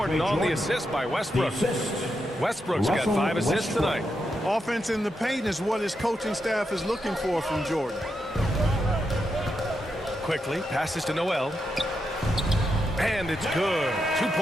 on the assist by Westbrook. Westbrook's got 5 assists tonight. Offense in the paint is what his coaching staff is looking for from Jordan. Quickly passes to Noel. And it's good. 2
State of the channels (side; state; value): both; normal; correlation 0.84